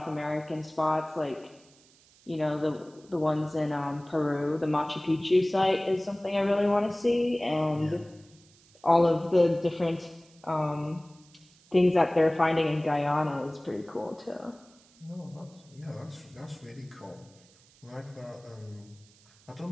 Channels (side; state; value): right; noise; hiss, 28 dB below the sound